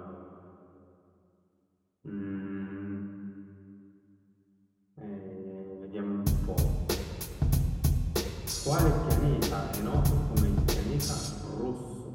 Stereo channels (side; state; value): both; identical; correlation 1.00